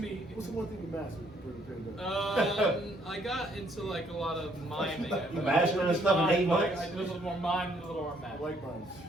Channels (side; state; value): both; normal; correlation 0.67